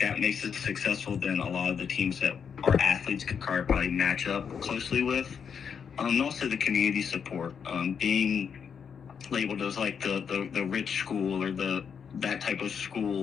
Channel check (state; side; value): quieter; right; 6.9 dB